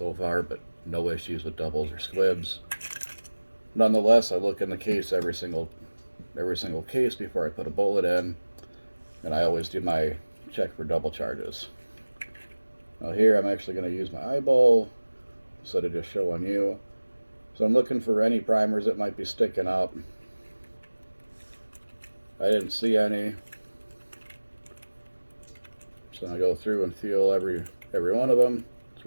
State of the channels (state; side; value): inverted; both; correlation -1.00